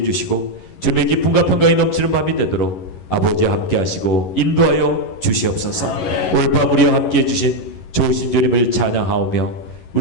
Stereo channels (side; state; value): right; late; 11 ms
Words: 주시고 주님의 기쁨과 평강이 넘치는 밤이 되도록 아버지와 함께 하시고 인도하여 주시옵소서. 오늘 밤 우리와 함께해 주신 좋으신 주님을 찬양하오며